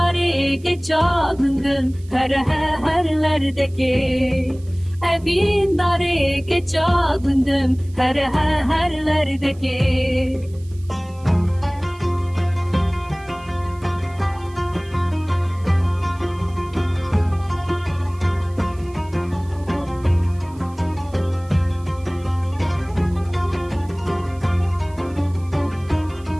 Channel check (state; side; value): noise; right; hiss, 27 dB below the sound